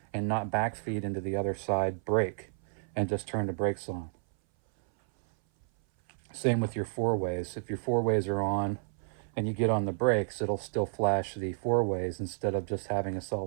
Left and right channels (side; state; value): left; silent; 57 dB below the other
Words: and not backfeed into the other side brake and just turn the brakes on. Same with your 4-ways. If your 4-ways are on and you get on the brakes, it'll still flash the 4-ways instead of just having a